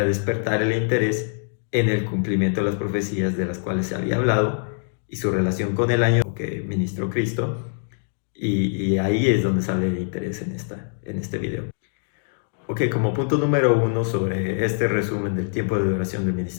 despertar el interés en el cumplimiento de las profecías de las cuales se había hablado y su relación con el año que ministró Cristo, y ahí es donde sale el interés en este video. Ok, como punto número 1 sobre este resumen del tiempo de duración del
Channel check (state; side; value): silent; right; digital silence